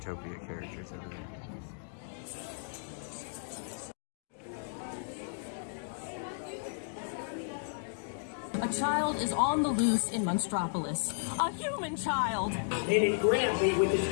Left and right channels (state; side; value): silent; right; digital silence